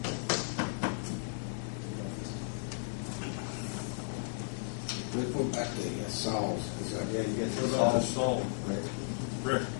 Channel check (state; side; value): silent; right; digital silence